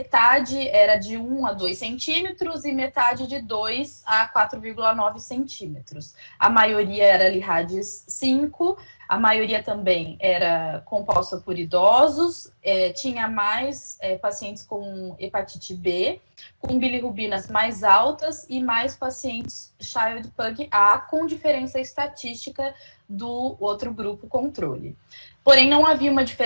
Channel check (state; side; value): inverted; both; correlation -1.00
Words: era de 1 a 2 centímetros e metade de 2 a 4,9 centímetros. A maioria era Lee-Hadges 5, a maioria também era composta por idosos, tinha mais pacientes com hepatite B, com bilirrubinas mais altas e mais pacientes Child-Pugh A, com diferença estatística do outro grupo controle. Porém, não havia uma